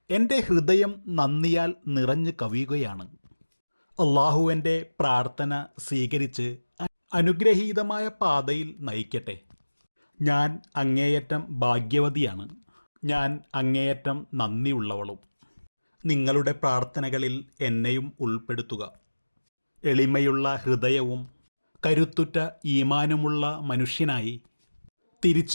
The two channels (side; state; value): both; inverted; correlation -1.00